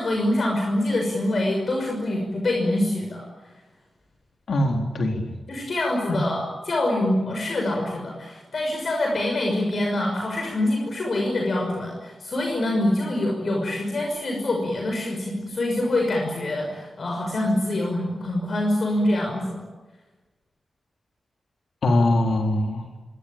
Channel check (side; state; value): both; normal; correlation 0.91